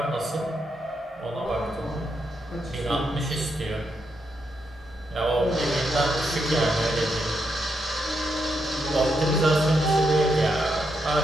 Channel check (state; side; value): normal; both; correlation 0.81